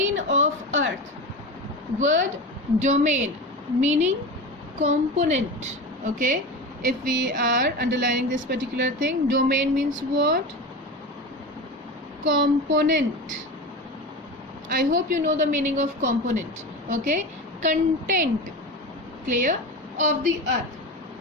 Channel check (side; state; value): both; normal; correlation 0.26